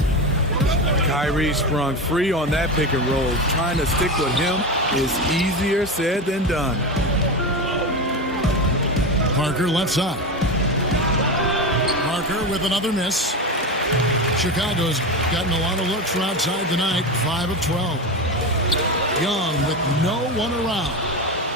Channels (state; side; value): normal; both; correlation 0.20